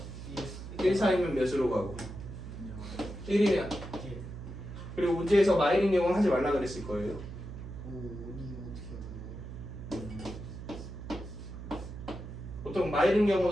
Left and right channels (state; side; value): noise; right; hum, 10 dB below the sound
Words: 1 사이면 몇으로 가고 1이면 그리고 문제에서 마이너스 영은 하지 말라 그랬을 거예요. 보통 마이른